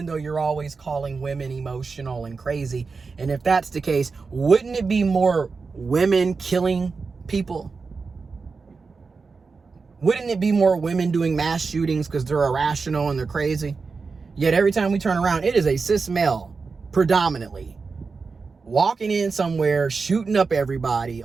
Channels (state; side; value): quieter; left; 4.6 dB